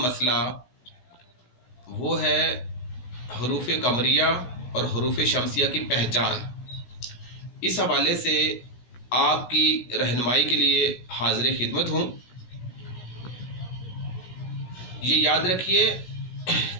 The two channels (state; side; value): late; right; 16 ms